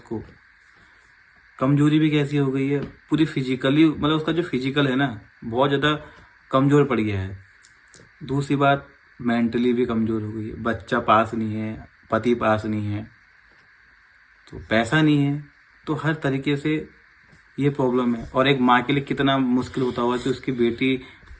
कमजोरी भी कैसी हो गई है पूरी फिजिकली, मतलब उसका जो फिजिकल है ना बहुत ज़्यादा कमज़ोर पड़ गया है। दूसरी बात मेंटली भी कमज़ोर हो गई है। बच्चा पास नहीं है, पति पास नहीं है, तो पैसा नहीं है, तो हर तरीके से ये प्रॉब्लम है। और एक माँ के लिए कितना मुश्किल होता होगा कि उसकी बेटी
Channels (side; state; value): both; identical; correlation 1.00